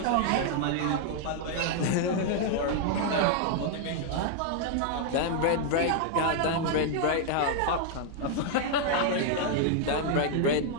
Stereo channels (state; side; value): different; both; correlation 0.00